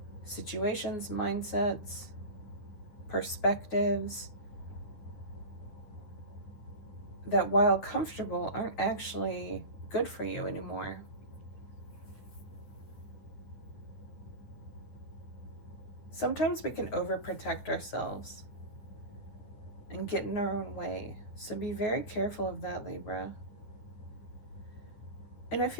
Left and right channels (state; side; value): late; right; 9.9 ms